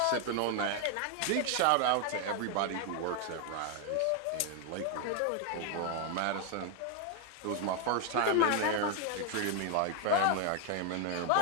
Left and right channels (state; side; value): different; both; correlation 0.01